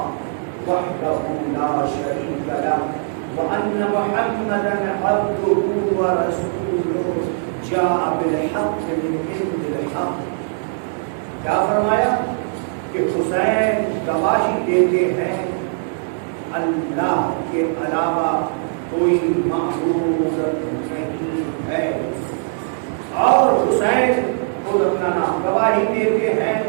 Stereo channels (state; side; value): silent; left; digital silence